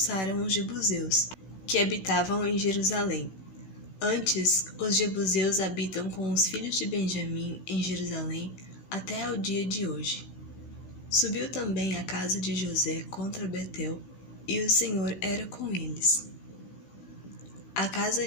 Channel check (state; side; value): late; right; 16 ms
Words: os jebuseus, que habitavam em Jerusalém. Antes, os jebuseus habitam com os filhos de Benjamim em Jerusalém até ao dia de hoje. Subiu também a casa de José contra Betel, e o Senhor era com eles. A casa